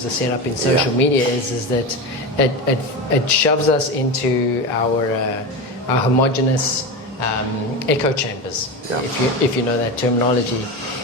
are set up in social media is that it shoves us into our homogenous echo chambers, if you know that terminology.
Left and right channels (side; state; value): both; normal; correlation 0.21